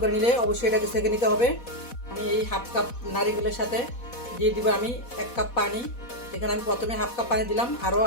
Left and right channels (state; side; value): late; right; 4.1 ms